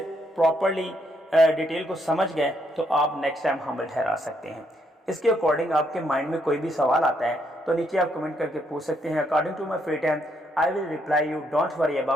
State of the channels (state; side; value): normal; both; correlation 0.74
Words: प्रॉपरली डिटेल को समझ गए तो आप नेक्स्ट टाइम हमल ठहरा सकते हैं। इसके अकॉर्डिंग आपके माइंड में कोई भी सवाल आता है तो नीचे आप कमेंट करके पूछ सकते हैं। According to my free time I will reply you, don't worry